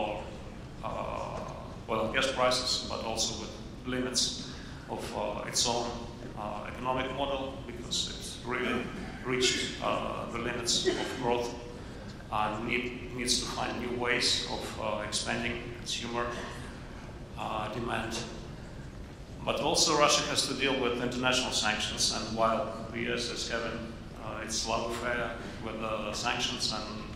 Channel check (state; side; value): identical; both; correlation 1.00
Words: oil and gas prices, but also with limits of its own economic model, because it's really reached the limits of growth and needs to find new ways of expanding consumer demand. But also Russia has to deal with international sanctions, and while the US is having its love affair with sanctions and